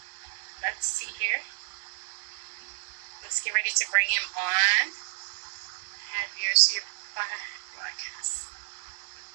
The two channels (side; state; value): left; silent; digital silence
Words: Let's see here. Let's get ready to bring him on. Have yours here broadcast.